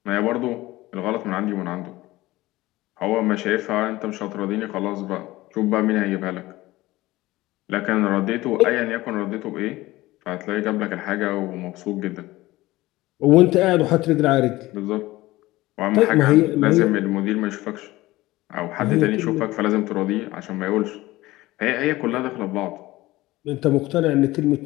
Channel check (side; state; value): right; quieter; 18.3 dB